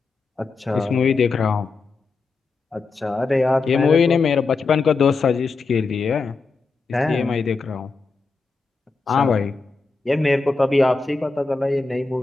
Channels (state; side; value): quieter; right; 4.2 dB